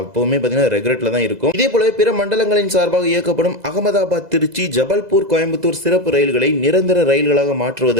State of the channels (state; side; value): late; left; 2.0 ms